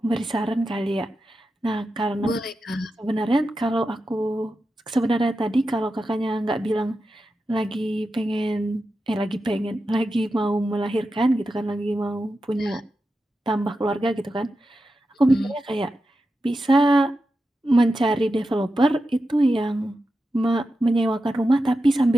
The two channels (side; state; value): both; normal; correlation 0.90